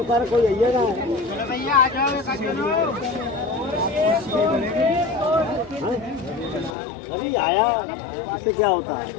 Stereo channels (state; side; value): drops out; right; at 6.8 s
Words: कोई है ना भैया आ जाओ अभी आया इससे क्या होता है